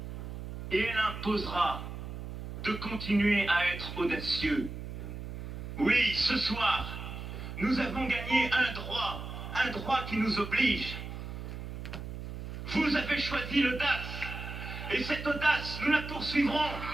et elle imposera de continuer à être audacieux. Oui, ce soir, nous avons gagné un droit qui nous oblige. Vous avez choisi l'audace, et cette audace, nous la poursuivrons.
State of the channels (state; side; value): noise; right; hum, 8 dB below the sound